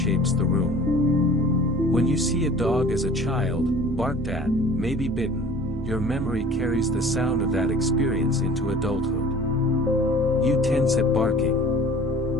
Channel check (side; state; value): both; normal; correlation 0.46